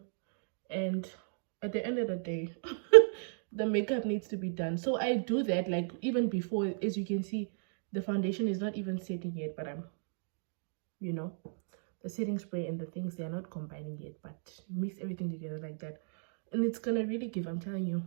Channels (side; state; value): left; silent; digital silence